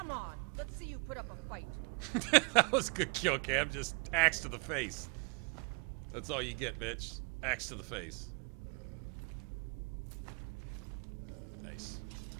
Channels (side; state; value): left; quieter; 33.9 dB